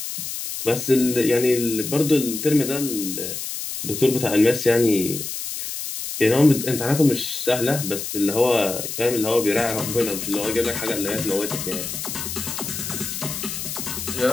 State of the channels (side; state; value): left; noise; hiss, 6 dB below the sound